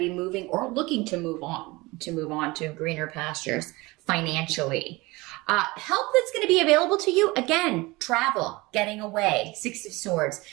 moving or looking to move on to greener pastures financially. Help that's going to be available to you, again, travel, getting away, Six of Swords,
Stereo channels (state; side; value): quieter; left; 22.6 dB